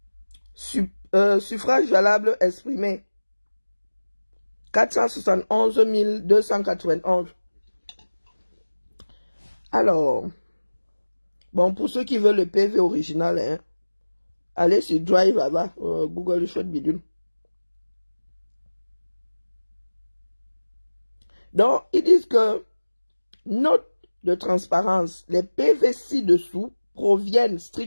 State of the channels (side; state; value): both; inverted; correlation -1.00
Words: Suffrage valable exprimé. 471 291. Alors, bon, pour ceux qui veulent le PV original, hein, allez sur Drive là-bas, Google le chouette bidule. Donc, ils disent que, note de transparence, les PV ci-dessous proviennent